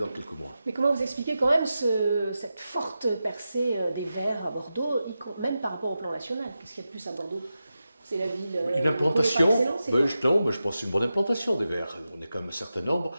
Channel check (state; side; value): inverted; both; correlation -0.91